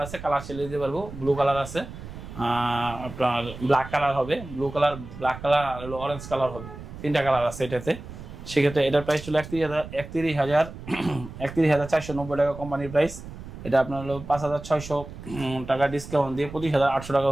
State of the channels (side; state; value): right; noise; rumble, 13 dB below the sound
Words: আছে, কালার চেলে দিতে পারবো। ব্লু কালার আছে, আপনার ব্ল্যাক কালার হবে, ব্লু কালার, ব্ল্যাক কালার আর হলো অরেঞ্জ কালার হবে, 3টা কালার আছে এটাতে। সেক্ষেত্রে এটার প্রাইস ছিল 31,490 টাকা কোম্পানির প্রাইস। এটা আপনার হলো 5,600 টাকা ডিসকাউন্ট দিয়ে 25,800 টাকা